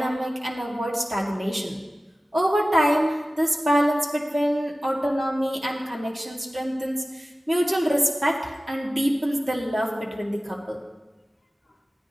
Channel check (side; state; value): both; normal; correlation 0.96